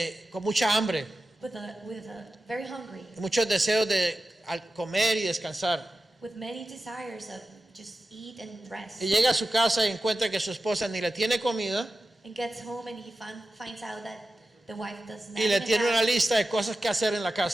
con mucha hambre, with a very hungry, muchos deseos de comer y descansar. with many desires of just eat and rest. Y llega a su casa y encuentra que su esposa ni le tiene comida And gets home and he finds out that the wife does not y le even tiene una have lista de cosas que hacer en la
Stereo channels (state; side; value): normal; both; correlation 0.93